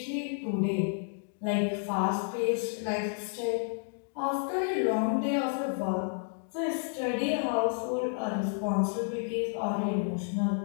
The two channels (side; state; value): right; silent; 57 dB below the other